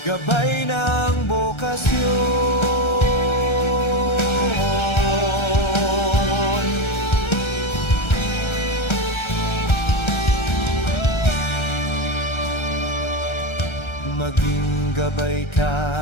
gabay ng bokasyon. Maging gabay ka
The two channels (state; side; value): late; right; 1.3 ms